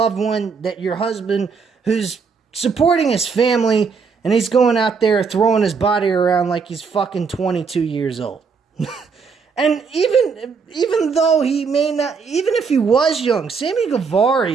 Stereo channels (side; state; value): left; quieter; 5.4 dB